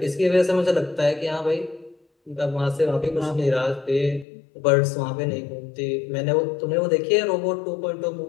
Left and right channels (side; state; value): right; drops out; at 4.2 s